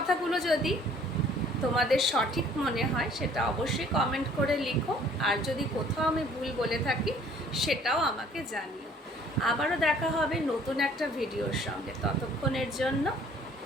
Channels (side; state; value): both; normal; correlation 0.56